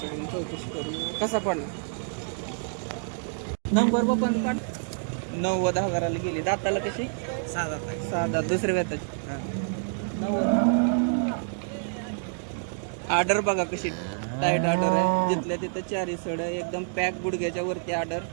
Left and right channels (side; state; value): left; silent; digital silence